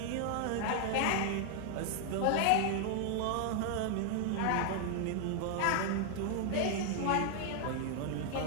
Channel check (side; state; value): both; different; correlation 0.00